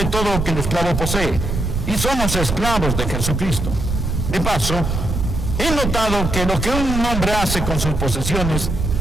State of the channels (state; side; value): noise; right; rumble, 2 dB below the sound